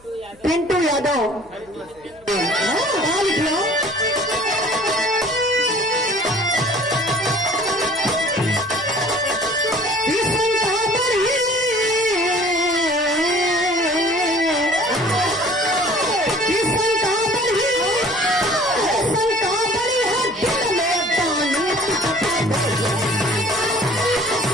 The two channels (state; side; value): noise; left; hum, 29 dB below the sound